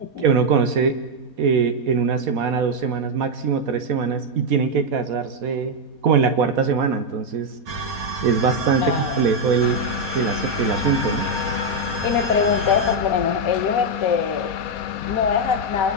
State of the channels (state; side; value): late; left; 4.2 ms